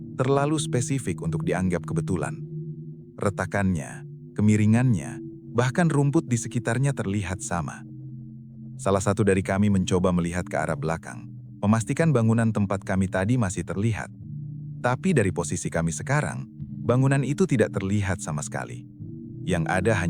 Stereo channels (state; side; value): identical; both; correlation 1.00